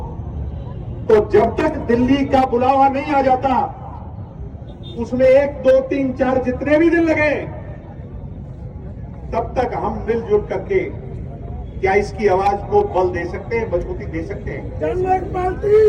तो जब तक दिल्ली का बुलावा नहीं आ जाता, उसमें 1, 2, 3, 4 जितने भी दिन लगे, तब तक हम मिलजुल करके क्या इसकी आवाज को बल दे सकते हैं, मजबूती दे सकते हैं।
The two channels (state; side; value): identical; both; correlation 1.00